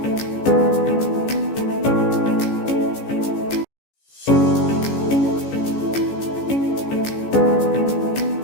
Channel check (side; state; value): right; late; 14 ms